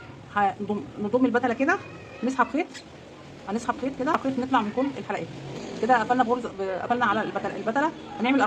نضم البتله كده، نسحب خيط، هنسحب خيط كده، خيط، نطلع من كل الحلقات كده. قفلنا قفلنا على البتله. هنعمل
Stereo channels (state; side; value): identical; both; correlation 1.00